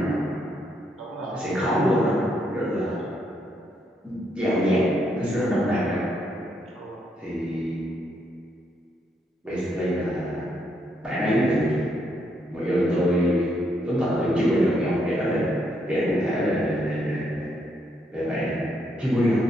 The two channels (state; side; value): normal; both; correlation 0.75